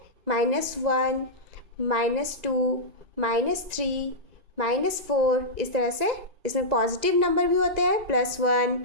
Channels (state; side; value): late; left; 2.0 ms